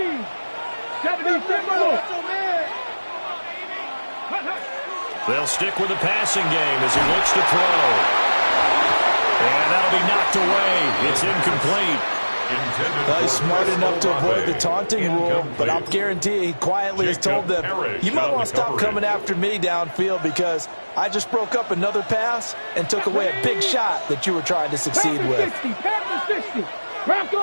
70, They'll stick with the passing game as he looks to throw. And that'll be knocked away. It's incomplete. Well, he's smart enough to avoid the taunting rule, but I'll guarantee he quietly has told them, you might want to stop coming after me downfield because I just broke up another pass and took away a big shot that you were trying to succeed with.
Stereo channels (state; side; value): inverted; both; correlation -1.00